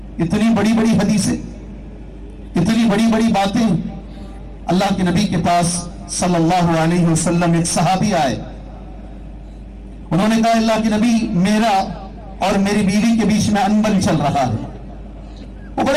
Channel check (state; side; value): identical; both; correlation 1.00